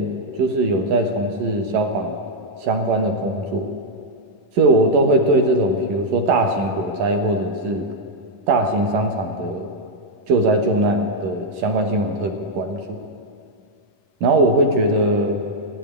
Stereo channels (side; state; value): left; late; 11 ms